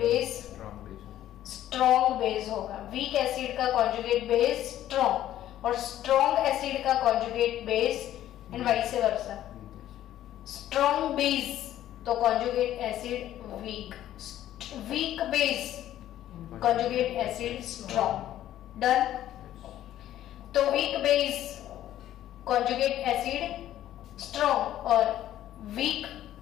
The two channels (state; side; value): quieter; right; 12.6 dB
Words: स्ट्रॉन्ग बेस होगा। वीक एसिड का कॉन्जुगेट बेस स्ट्रॉन्ग और स्ट्रॉन्ग एसिड का conjugate base and vice versa. Strong base तो conjugate acid weak, weak base conjugate acid strong. Done? तो weak base conjugate acid strong और weak